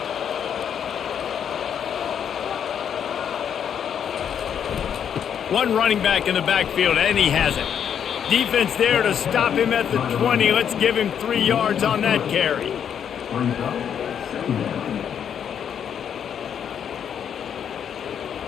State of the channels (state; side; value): quieter; right; 8.4 dB